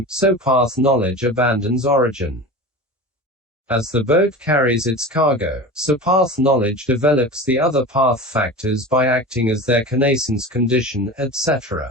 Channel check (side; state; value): both; normal; correlation 0.31